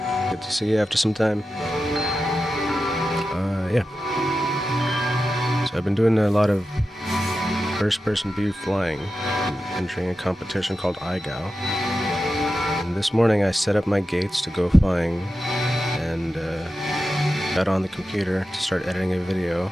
Good to see you after some time. Yeah. So I've been doing a lot of first-person view flying, and entering a competition called IGAO. And this morning I set up my gates to go flying, and got on the computer to start editing a video,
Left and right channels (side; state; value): both; normal; correlation 0.91